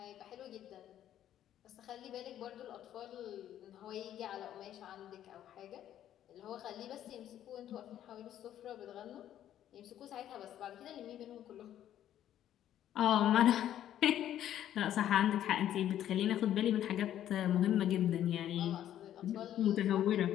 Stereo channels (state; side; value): quieter; right; 11.4 dB